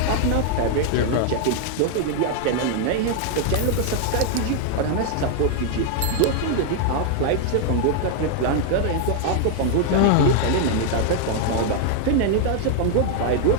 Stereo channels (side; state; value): both; different; correlation 0.00